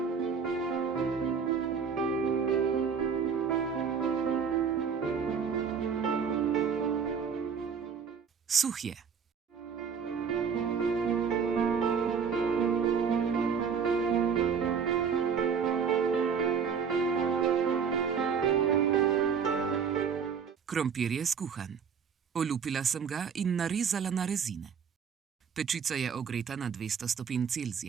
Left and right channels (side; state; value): left; quieter; 6.5 dB